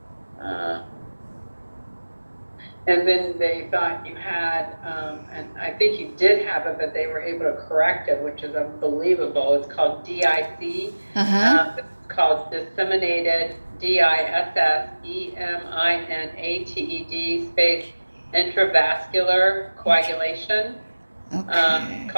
and then they thought you had, and I think you did have it, but they were able to correct it, which is unbelievable. It's called DIC. It's called disseminated, DISSEMINATED space intravascular coagulation. Okay.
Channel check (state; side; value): inverted; both; correlation -1.00